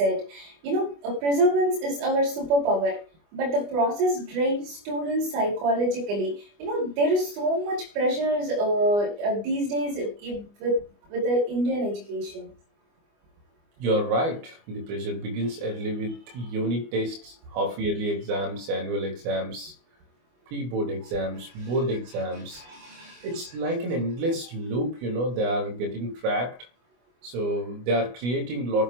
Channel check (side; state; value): left; late; 24 ms